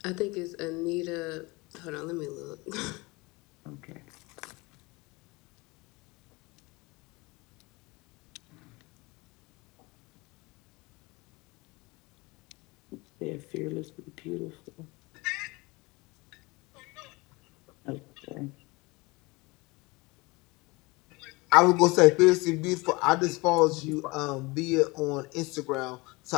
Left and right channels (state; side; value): quieter; right; 24.5 dB